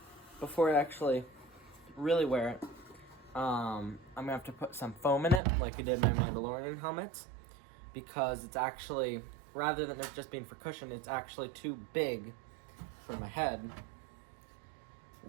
before I actually really wear it, I'm gonna have to put some foam in it, like I did my Mandalorian helmets, because it's actually, rather than it just being for cushion, it's actually too big for my head,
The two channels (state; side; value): drops out; left; at 5.4 s